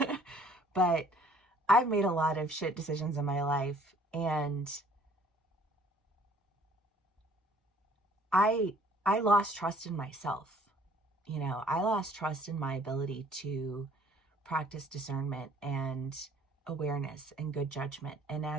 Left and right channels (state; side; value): normal; both; correlation 0.57